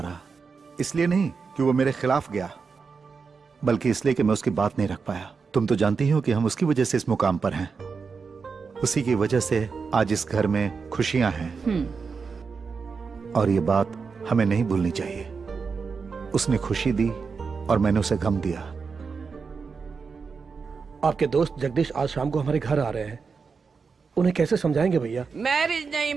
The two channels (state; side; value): quieter; left; 5.2 dB